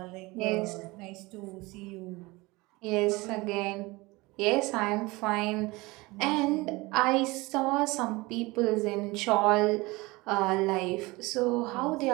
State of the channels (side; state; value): left; quieter; 22.7 dB